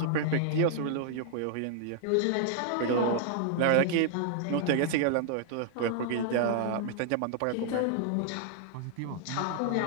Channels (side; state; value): both; different; correlation -0.01